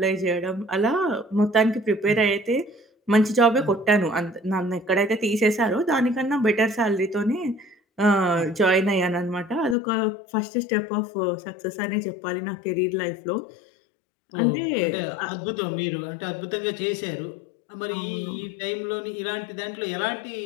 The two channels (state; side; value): drops out; right; at 9.8 s